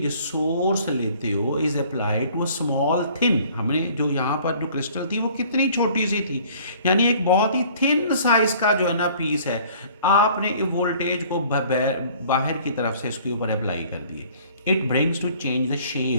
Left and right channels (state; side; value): inverted; both; correlation -0.53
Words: सोर्स लेते हो is applied to a small thin, हमने जो यहाँ पर जो क्रिस्टल थी वो कितनी छोटी सी थी, यानी एक बहुत ही थिन साइज का जो है ना पीस है, आपने वोल्टेज को बाहर की तरफ से इसके ऊपर अप्लाई कर दिए। It brings to change the